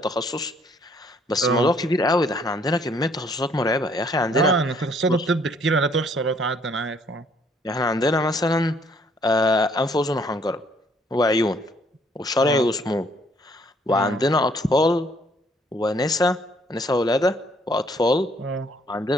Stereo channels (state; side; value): normal; both; correlation 0.64